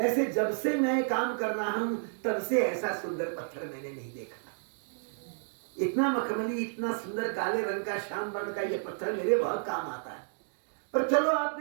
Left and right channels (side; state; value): left; silent; digital silence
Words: जब से मैं काम कर रहा हूं तब से ऐसा सुंदर पत्थर मैंने नहीं देखा। इतना मखमली, इतना सुंदर काले रंग का, श्याम वर्ण का ये पत्थर मेरे बहुत काम आता है। पर चलो,